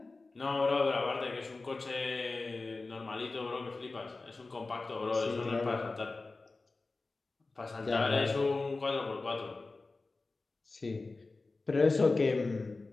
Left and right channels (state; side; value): quieter; right; 3.5 dB